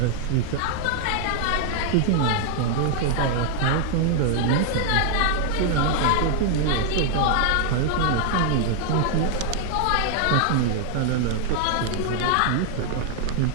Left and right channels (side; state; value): both; different; correlation 0.00